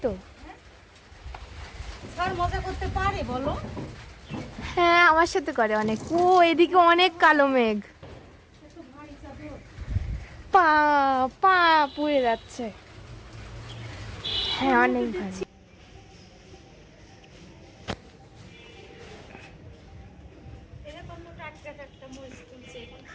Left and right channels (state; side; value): identical; both; correlation 1.00